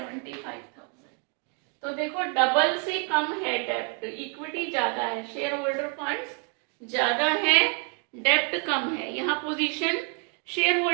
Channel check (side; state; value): left; quieter; 38.0 dB